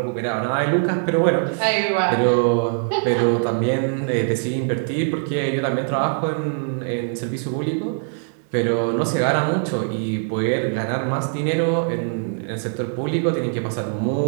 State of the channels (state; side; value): silent; left; 58 dB below the other